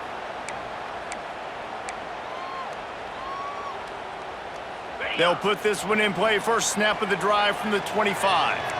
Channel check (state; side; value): identical; both; correlation 1.00